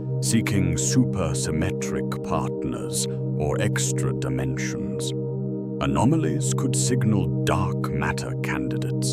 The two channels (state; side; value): identical; both; correlation 1.00